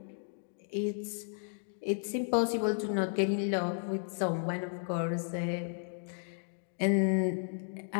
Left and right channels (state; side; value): silent; right; digital silence